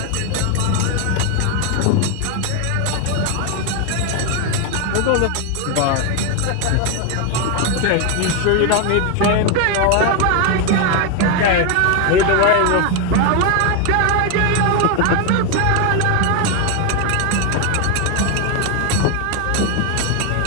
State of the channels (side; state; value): both; different; correlation 0.01